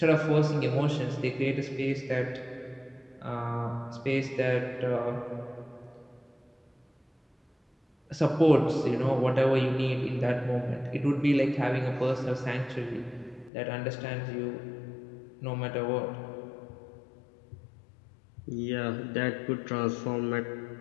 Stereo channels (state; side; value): drops out; right; at 13.5 s